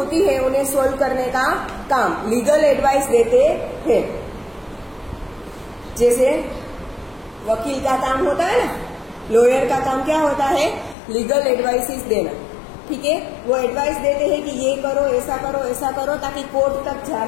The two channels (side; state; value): right; drops out; at 11.0 s